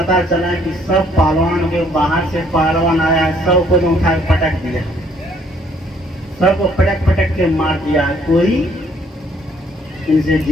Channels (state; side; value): normal; both; correlation 0.64